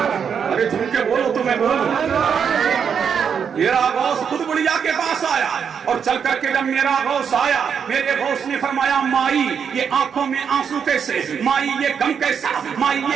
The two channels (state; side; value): quieter; left; 7.1 dB